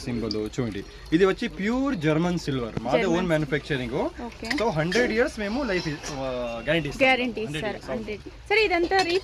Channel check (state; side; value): identical; both; correlation 1.00